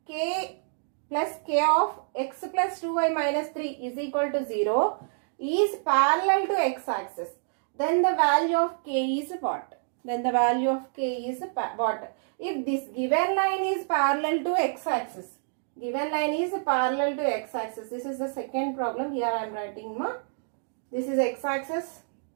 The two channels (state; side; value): silent; left; digital silence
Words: k plus k of x plus 2y minus 3 is equal to 0 is parallel to x-axis, then the value of k is what? Then the value of k is what? If this given line is parallel to x-axis, given line is parallel to x-axis. This is the second problem. Here I am writing this is x-axis.